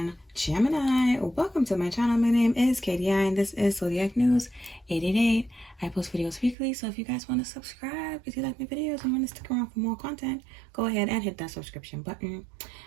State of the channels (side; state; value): left; drops out; at 6.6 s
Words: Gemini? Welcome to my channel. My name is Katie and this is Zodiac News 888. I post videos weekly, so if you guys want to subscribe, if you like my videos and want to stick around for more content, go ahead and hit that subscription button.